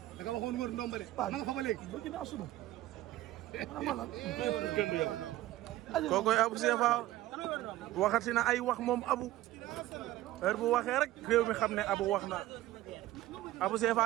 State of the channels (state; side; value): quieter; left; 15.6 dB